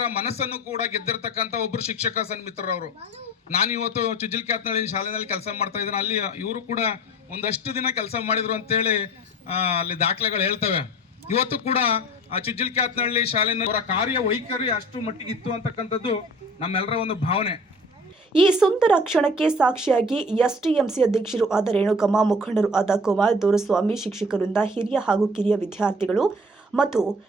ಮನಸ್ಸನ್ನು ಕೂಡ ಗೆದ್ದಿರ್ತಕ್ಕಂಥ ಒಬ್ರು ಶಿಕ್ಷಕ ಸನ್ಮಿತ್ರರವರು. ನಾನು ಇವತ್ತು ಚುಜಿಲ್ಕ್ಯಾತ್ನಳ್ಳಿ ಶಾಲೆಯಲ್ಲಿ ಕೆಲಸ ಮಾಡ್ತಾ ಇದ್ದೀನಿ. ಅಲ್ಲಿ ಇವರು ಕೂಡ ಒಂದಷ್ಟು ದಿನ ಕೆಲಸ ಮಾಡಿದ್ರು ಅಂತೇಳಿ ಅಲ್ಲಿ ದಾಖಲೆಗಳು ಹೇಳ್ತವೆ. ಇವತ್ತು ಕೂಡ ಆ ಚುಜಿಲ್ಕ್ಯಾತ್ನಳ್ಳಿ ಶಾಲೆನ ಅವರ ಕಾರ್ಯ ವೈಖರಿ ಅಷ್ಟು ಮಟ್ಟಿಗೆ ಇತ್ತು ಅಂತಕ್ಕಂಥದ್ದು ನಮ್ಮೆಲ್ಲರ ಒಂದು ಭಾವನೆ. ಈ ಸುಂದರ ಕ್ಷಣಕ್ಕೆ ಸಾಕ್ಷಿಯಾಗಿ ಎಸ್ಟಿಎಂಸಿ ಅಧ್ಯಕ್ಷರು ಆದ ರೇಣುಕಮ್ಮ, ಮುಖಂಡರು ಆದ ಕುಮಾರ್ ದೊರೆಸ್ವಾಮಿ, ಶಿಕ್ಷಕರಿಂದ ಹಿರಿಯ ಹಾಗೂ ಕಿರಿಯ ವಿದ್ಯಾರ್ಥಿಗಳು ಮತ್ತು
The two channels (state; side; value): normal; both; correlation 0.44